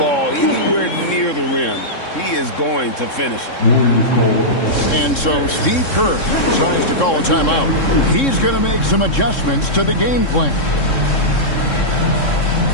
anywhere near the rim, he is going to finish it. And so Steve Kerr decides to call a timeout. He's going to make some adjustments to the game plan.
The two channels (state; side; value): late; right; 3.7 ms